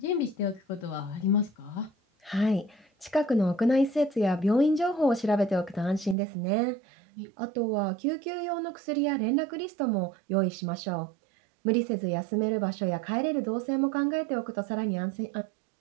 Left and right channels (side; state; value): left; drops out; at 6.2 s